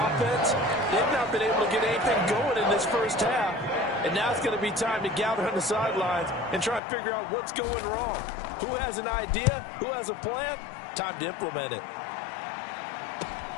they've not been able to get anything going in this first half. And now it's going to be time to gather on the sidelines and try and figure out what's going wrong. Who has an idea? Who has a plan? Time to implement it.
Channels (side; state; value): right; drops out; at 6.8 s